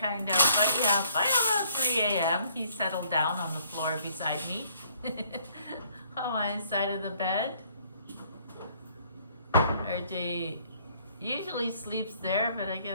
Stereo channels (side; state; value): both; inverted; correlation -0.62